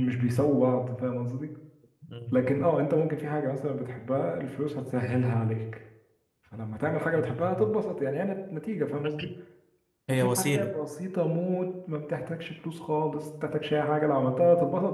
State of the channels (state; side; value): identical; both; correlation 1.00